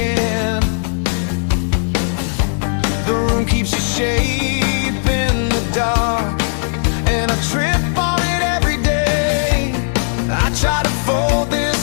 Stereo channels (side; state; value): right; silent; digital silence